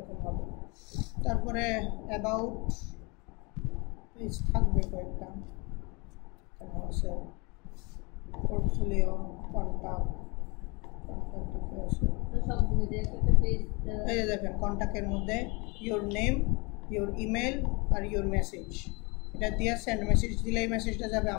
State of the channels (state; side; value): quieter; right; 28.6 dB